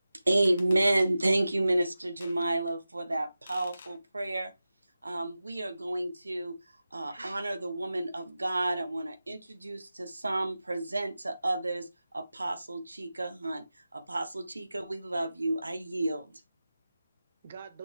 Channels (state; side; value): inverted; both; correlation -0.94